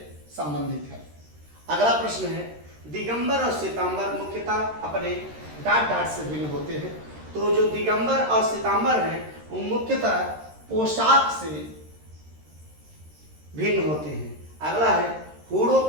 संबंधित है। अगला प्रश्न है, दिगंबर और श्वेतांबर मुख्यतः अपने डाट डाट से भिन्न होते हैं। तो जो दिगंबर और श्वेतांबर हैं वो मुख्यतः पोशाक से भिन्न होते हैं। अगला है, हूणों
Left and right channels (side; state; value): left; late; 13 ms